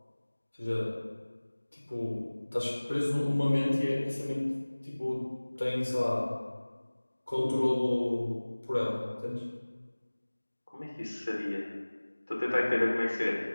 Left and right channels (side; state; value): both; inverted; correlation -1.00